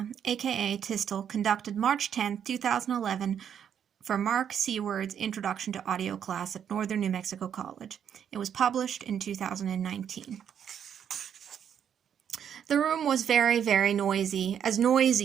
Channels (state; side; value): quieter; left; 8.6 dB